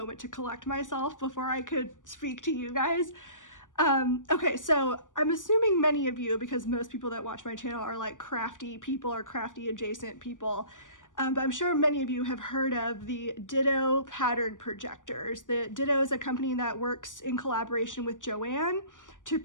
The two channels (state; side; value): late; right; 0.87 ms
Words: to collect myself before I could speak to you guys. Okay, so I'm assuming many of you, because most people that watch my channel are like crafty people or crafty adjacent people, but I'm sure many of you have heard of the Ditto pattern projectors. The Ditto is a company that works in collaboration with Joanne to